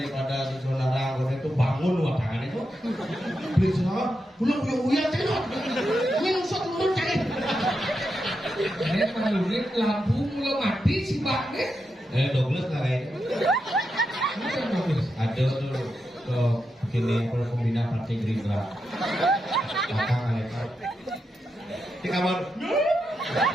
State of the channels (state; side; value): normal; both; correlation 0.86